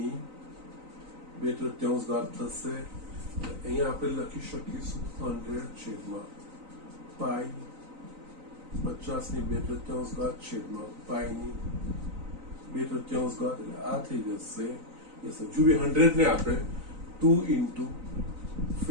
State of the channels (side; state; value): left; late; 3.9 ms